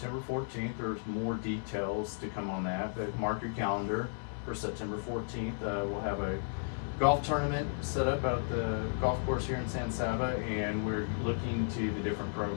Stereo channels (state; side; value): silent; right; 55 dB below the other